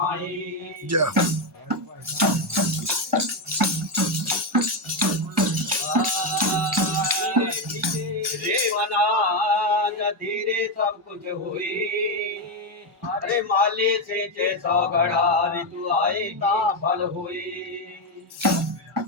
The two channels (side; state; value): both; normal; correlation 0.06